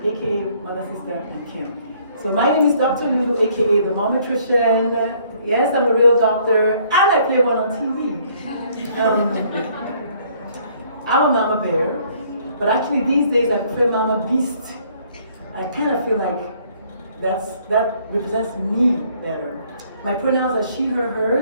aka Mother, Sister, and Kim. So my name is Dr. Lulu, aka the Momatrician. Yes, I'm a real doctor, and I play one on TV. I'm a mama bear, but actually these days I prefer mama beast. I kind of feel like that represents me better. My pronouns are she, her,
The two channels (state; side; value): inverted; both; correlation -0.63